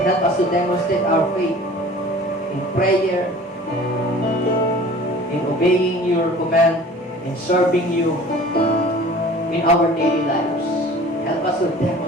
us to demonstrate our faith in prayer, in obeying your command, in serving you in our daily lives. Help us to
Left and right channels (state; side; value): normal; both; correlation 0.45